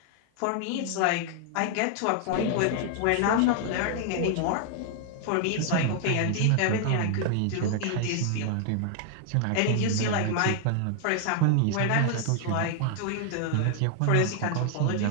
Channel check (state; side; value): different; both; correlation 0.00